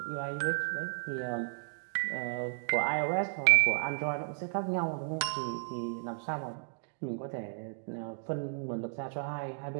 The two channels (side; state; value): left; silent; digital silence